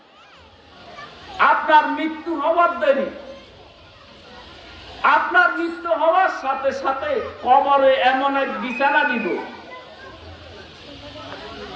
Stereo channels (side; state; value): both; identical; correlation 1.00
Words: আপনার মৃত্যু হওয়ার দেরি, আপনার মৃত্যু হওয়ার সাথে সাথে কবরে এমন এক বিছানা দিব,